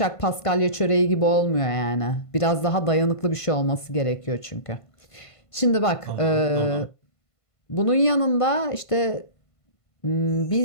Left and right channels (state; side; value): late; right; 1.5 ms